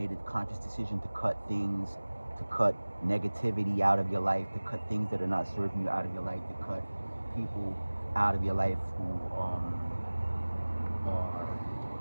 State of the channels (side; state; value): both; inverted; correlation -1.00